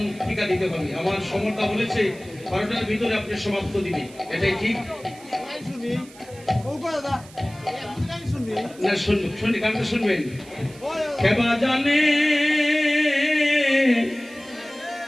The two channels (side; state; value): right; noise; hiss, 22 dB below the sound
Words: টিকা দিতে হবে। আমার সমর্থা বলেছে 12টার ভিতরে আপনি সমাপ্ত দিবে, এটাই ঠিক না? শুনি গানটা শুনবেন। খেবা জানে